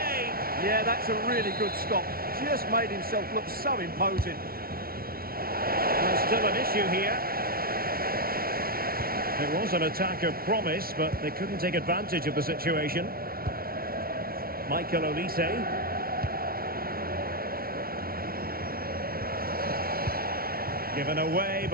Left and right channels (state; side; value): late; left; 0.43 ms